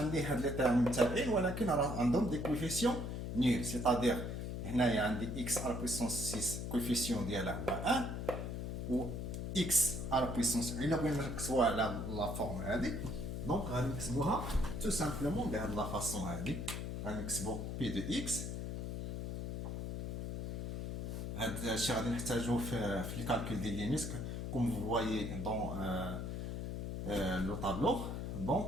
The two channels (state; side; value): noise; left; hum, 4 dB below the sound